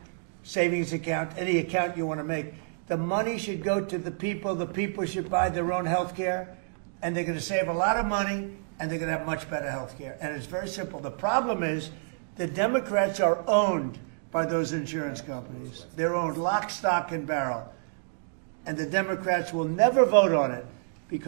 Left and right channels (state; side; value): silent; left; digital silence